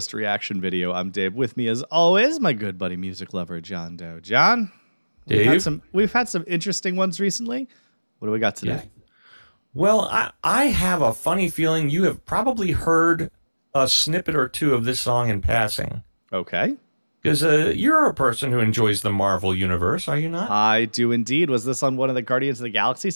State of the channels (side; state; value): both; inverted; correlation -1.00